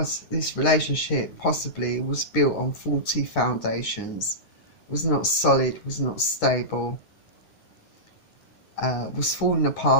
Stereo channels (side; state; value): right; late; 9.8 ms